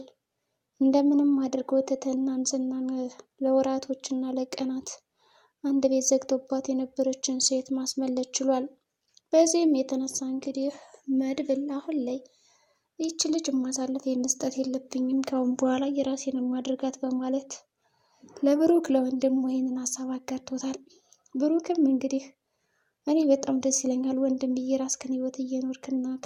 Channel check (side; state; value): both; identical; correlation 1.00